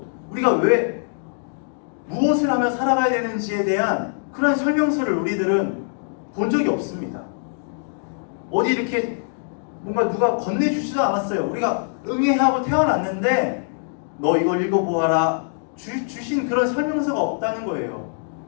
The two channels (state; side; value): silent; right; digital silence